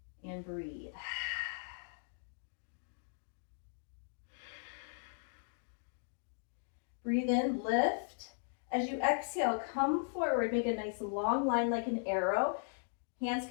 And breathe. Breathe in, lift. As you exhale, come forward, make a nice long line like an arrow. Hands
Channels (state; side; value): silent; right; digital silence